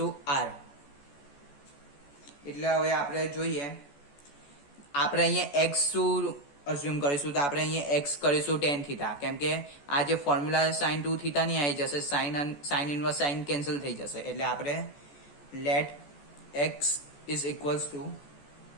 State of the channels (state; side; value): late; right; 14 ms